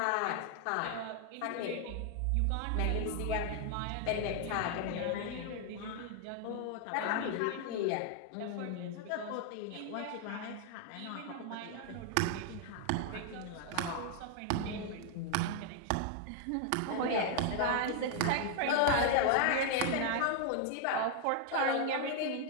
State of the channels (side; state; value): both; different; correlation 0.00